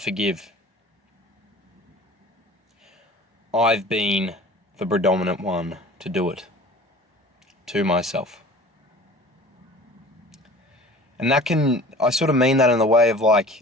I've been the predominant one to do it to myself. And I sort of mean that in the way of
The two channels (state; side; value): normal; both; correlation 0.44